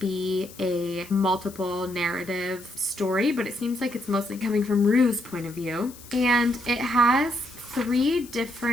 a multiple narrative story, but it seems like it's mostly coming from Rue's point of view. And it has 3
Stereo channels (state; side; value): noise; left; hiss, 19 dB below the sound